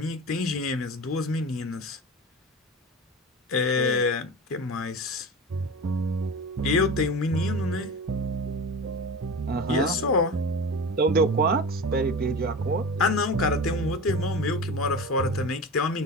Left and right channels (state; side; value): normal; both; correlation 0.30